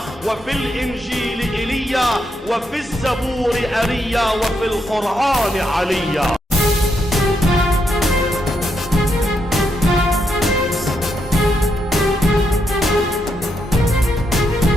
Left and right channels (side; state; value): both; normal; correlation 0.80